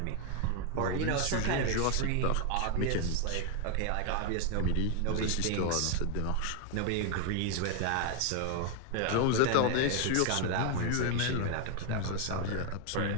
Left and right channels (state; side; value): different; both; correlation 0.01